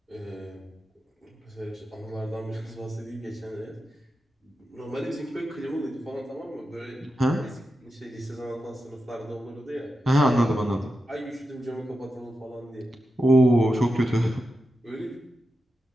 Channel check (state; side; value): normal; both; correlation 0.90